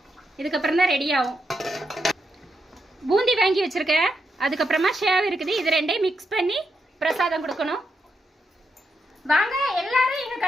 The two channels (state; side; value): normal; both; correlation 0.83